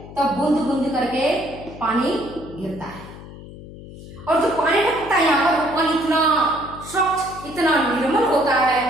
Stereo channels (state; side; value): noise; left; hum, 15 dB below the sound